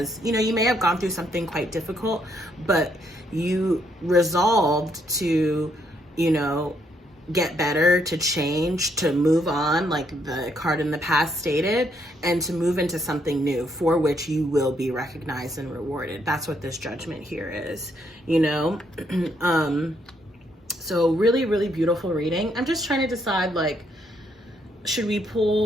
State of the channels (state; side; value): normal; both; correlation 0.73